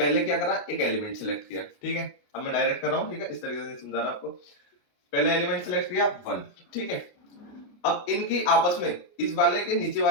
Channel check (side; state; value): right; late; 28 ms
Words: क्या करा, एक एलिमेंट सिलेक्ट किया, ठीक है, अब मैं डायरेक्ट कर रहा हूं, ठीक है, इस तरीके से समझा रहा आपको। पहले एलिमेंट सिलेक्ट किया 1, ठीक है। अब इनकी आपस में इस वाले के नीचे